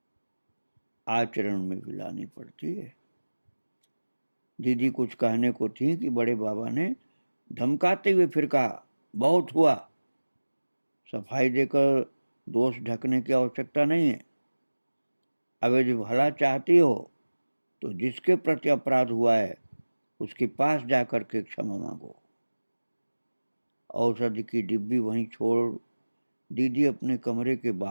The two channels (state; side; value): inverted; both; correlation -1.00